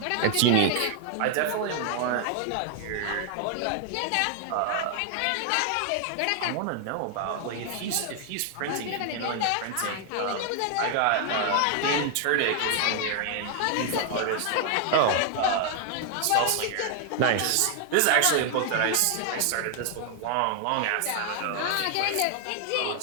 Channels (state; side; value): different; both; correlation 0.00